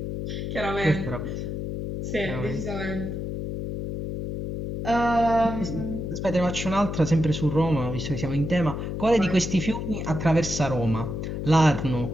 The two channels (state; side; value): noise; left; hum, 4 dB below the sound